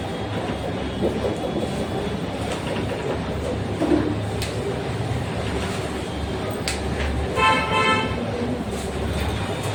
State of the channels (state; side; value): identical; both; correlation 1.00